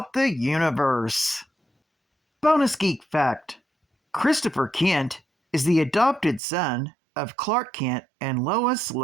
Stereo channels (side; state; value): left; drops out; at 6.4 s